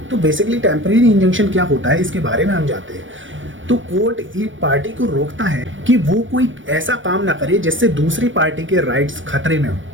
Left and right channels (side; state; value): left; late; 0.56 ms